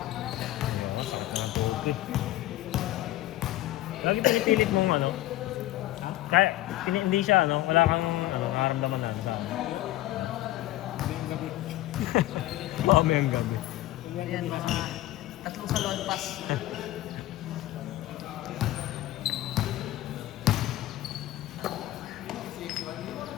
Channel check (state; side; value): quieter; right; 15.8 dB